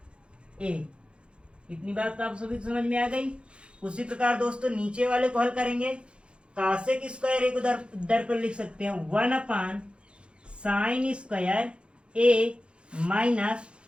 ए। इतनी बात आप सभी समझ में आ गई। उसी प्रकार दोस्तों नीचे वाले को हल करेंगे। कासेक स्क्वायर ए को दर पर लिख सकते हैं 1 अपान साइन स्क्वायर ए माइनस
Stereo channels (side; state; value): left; late; 0.057 ms